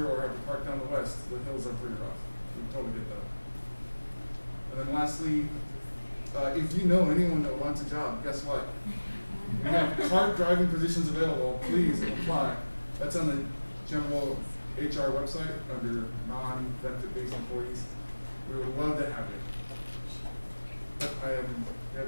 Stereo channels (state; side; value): inverted; both; correlation -1.00